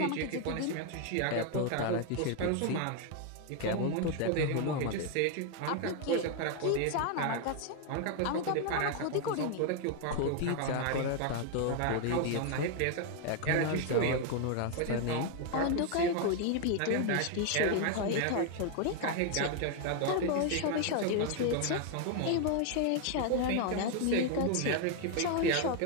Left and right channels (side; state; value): both; different; correlation 0.01